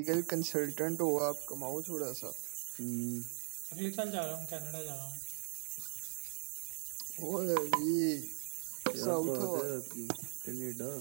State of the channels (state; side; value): silent; left; digital silence